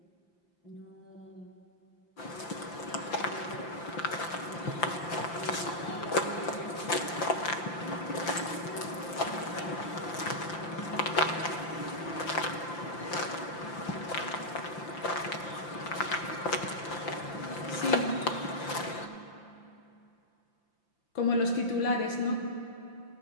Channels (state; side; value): late; right; 5.8 ms